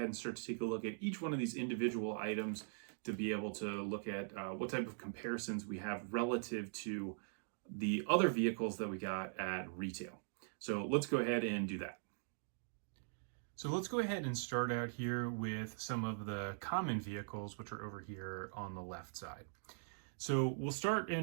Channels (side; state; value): left; silent; digital silence